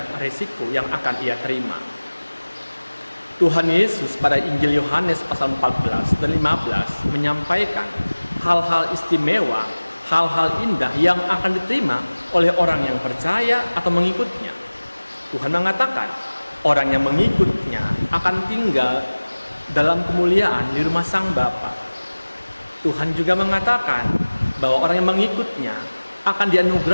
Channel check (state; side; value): inverted; both; correlation -1.00